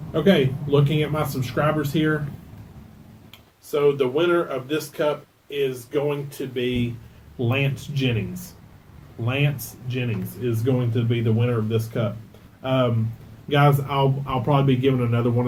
Okay, looking at my subscribers here. So the winner of this cup is going to be Lance Jennings. Lance Jennings is going to be the winner of this cup. Guys, I'll probably be giving another one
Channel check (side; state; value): both; identical; correlation 1.00